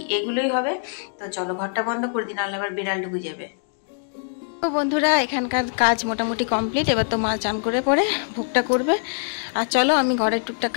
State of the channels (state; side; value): silent; right; digital silence